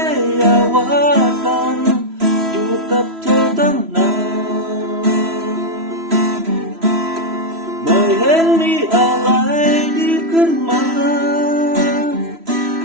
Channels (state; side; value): late; left; 3.0 ms